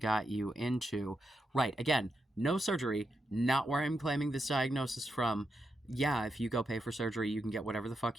you into? Right. Again, no surgery. Not where I'm claiming this diagnosis from. Yeah, if you go pay for surgery, you can get whatever the fuck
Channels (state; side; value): normal; both; correlation 0.85